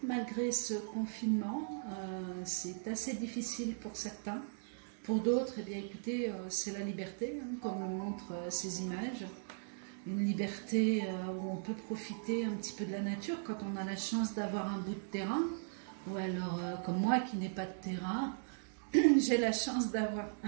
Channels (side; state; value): left; silent; digital silence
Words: malgré ce confinement. C'est assez difficile pour certains. Pour d'autres, eh bien écoutez, c'est la liberté, comme le montrent ces images. Une liberté où on peut profiter un petit peu de la nature quand on a la chance d'avoir un bout de terrain. Ou alors, comme moi qui n'ai pas de terrain, j'ai la chance d'avoir